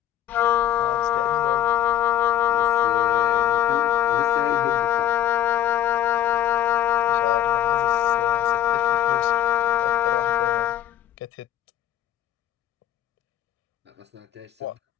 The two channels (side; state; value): right; quieter; 12.0 dB